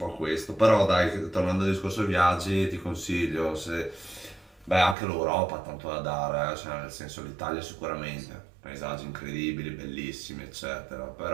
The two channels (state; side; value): drops out; left; at 5.0 s